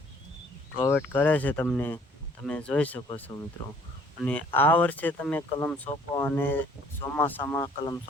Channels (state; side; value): normal; both; correlation 0.58